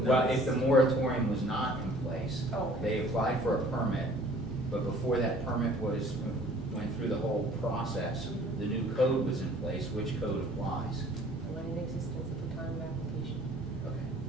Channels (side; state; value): both; normal; correlation 0.53